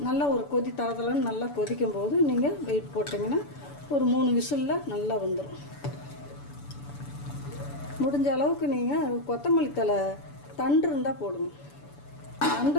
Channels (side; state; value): right; late; 7.0 ms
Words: நல்லா ஒரு கொதி தரத்துலன்னு நல்லா கொதிக்கும் போது நீங்கள் வெயிட் போட்டிங்கன்னா ஒரு 3 விசிலில் நல்லா வந்துடும். முடிஞ்ச அளவுக்கு நீங்கள் கொத்தமல்லி தழை தண்டு இருந்தால் போடுங்க.